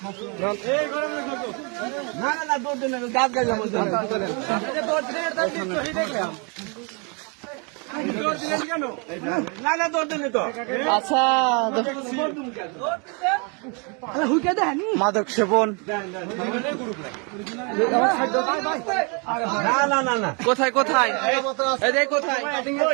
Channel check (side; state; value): left; quieter; 34.1 dB